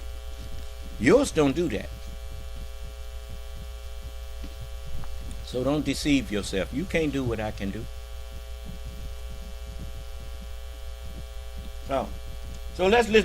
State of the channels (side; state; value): both; identical; correlation 1.00